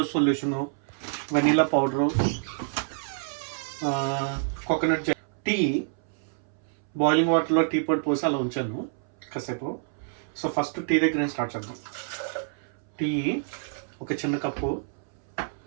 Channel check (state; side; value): silent; left; 60 dB below the other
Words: solution, vanilla powder, coconut tea. Boiling వాటర్లో టీ పొడి పోసి అలా ఉంచాను కాసేపు. సో ఫస్ట్ టీ దగ్గర నేను స్టార్ట్ చేద్దాం. టీ ఒక చిన్న కప్పు,